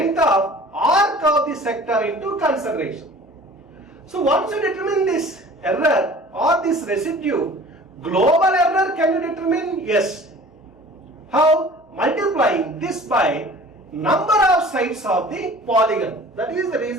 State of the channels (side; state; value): both; normal; correlation 0.46